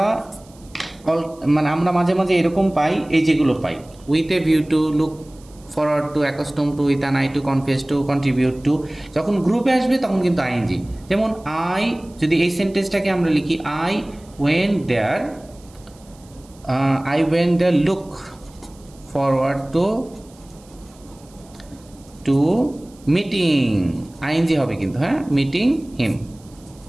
মানে আমরা মাঝে মাঝে এরকম পাই, এই যেগুলো পাই, with a view to, look forward to, accustom to, with an eye to, confess to, contribute to, যখন গ্রুপে আসবে তখন কিন্তু আইএনজি। যেমন আই, যদি এই সেন্টেন্সটাকে আমরা লিখি I went there, look forward to meeting, ING হবে কিন্তু, হ্যাঁ, মিটিং হিম।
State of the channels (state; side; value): noise; right; hiss, 27 dB below the sound